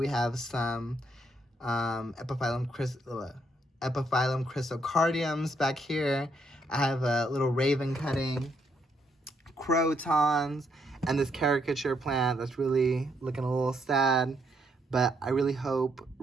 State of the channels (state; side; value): normal; both; correlation 0.74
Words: have some Epiphyllum Chrysocardiums. Back here, I have a little raven cutting, crotons, and this caricature plant that's really looking a little sad. But I really hope